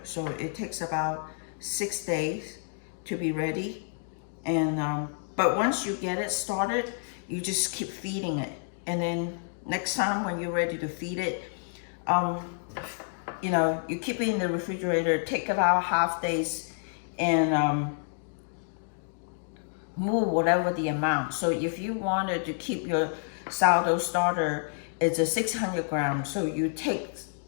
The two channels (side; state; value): right; silent; digital silence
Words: So it takes about 6 days to be ready. And but once you get it started, you just keep feeding it. And then next time when you're ready to feed it, you know, you keep it in the refrigerator, take it out half days, and move whatever the amount. So if you wanted to keep your sourdough starter, it's a 600 grams. So you take